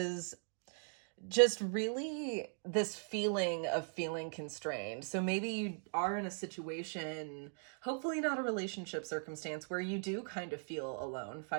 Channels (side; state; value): left; silent; 52 dB below the other